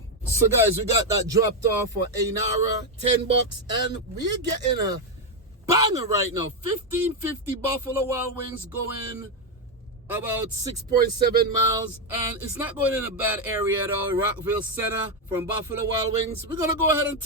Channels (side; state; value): both; normal; correlation 0.05